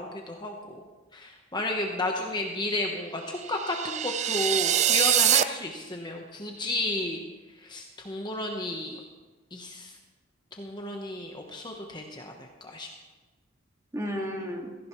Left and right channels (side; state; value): left; quieter; 3.7 dB